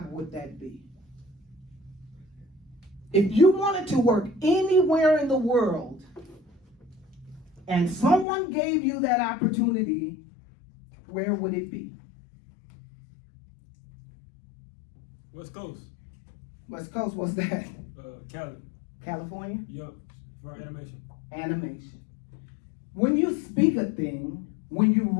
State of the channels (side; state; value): right; drops out; at 8.2 s